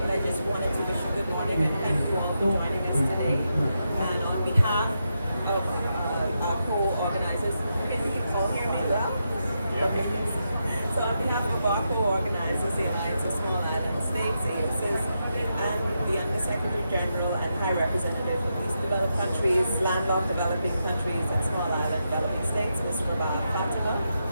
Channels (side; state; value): both; inverted; correlation -0.85